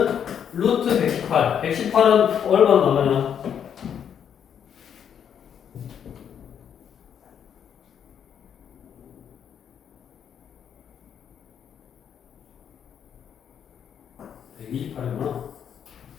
루트 118. 118은 얼마나 나가냐?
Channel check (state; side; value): quieter; right; 8.4 dB